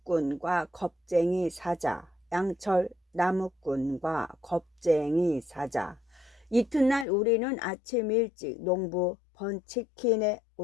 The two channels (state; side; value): drops out; right; at 7.1 s